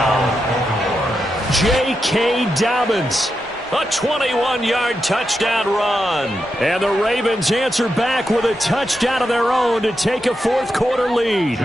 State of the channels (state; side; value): normal; both; correlation 0.87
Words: J.K. Dobbins. A 21-yard touchdown run. And the Ravens answer back with a touchdown of their own to take a 4th quarter lead.